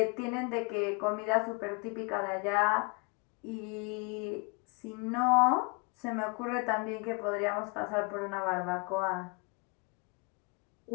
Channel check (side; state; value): right; quieter; 32.3 dB